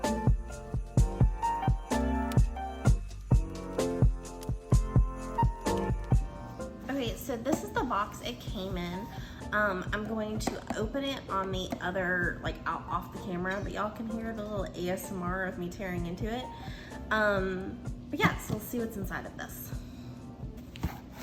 Okay, so this is the box it came in. I'm going to open it on the other, out off the camera, but y'all can hear the little ASMR of me tearing into it. But yeah, so let's see what's inside of this.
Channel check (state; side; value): identical; both; correlation 1.00